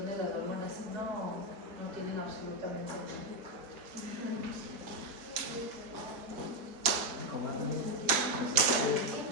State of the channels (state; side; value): late; left; 4.1 ms